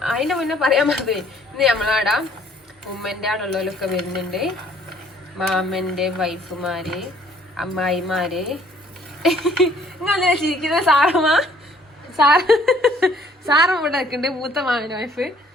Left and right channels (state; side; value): normal; both; correlation 0.60